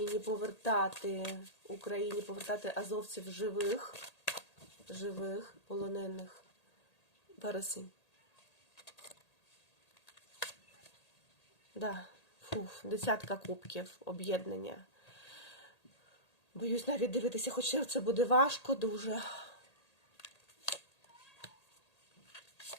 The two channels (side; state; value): right; late; 1.8 ms